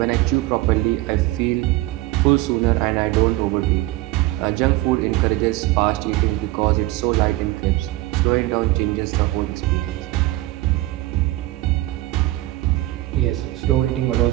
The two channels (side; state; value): left; quieter; 17.8 dB